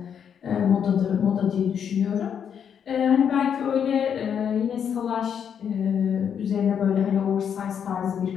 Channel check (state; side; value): quieter; right; 8.0 dB